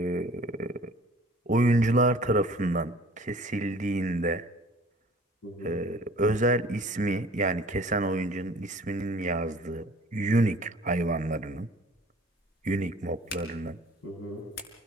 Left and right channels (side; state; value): both; normal; correlation 0.49